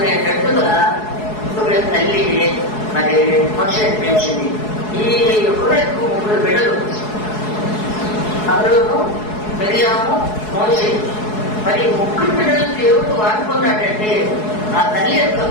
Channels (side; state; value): right; late; 4.7 ms